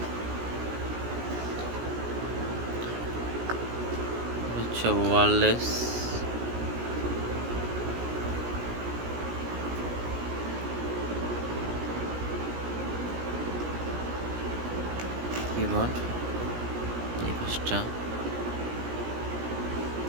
হচ্ছে ওয়্যারলেস কিবোর্ড। এই পাশটা।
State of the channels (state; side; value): late; left; 17 ms